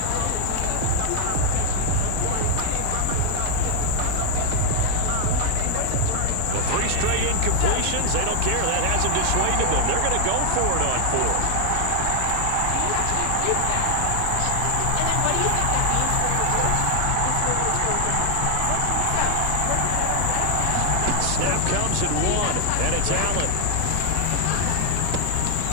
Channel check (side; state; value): both; different; correlation 0.00